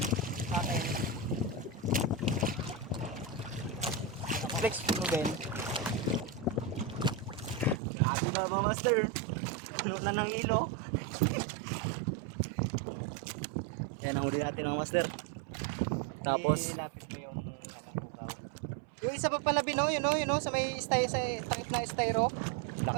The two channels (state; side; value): drops out; left; at 7.8 s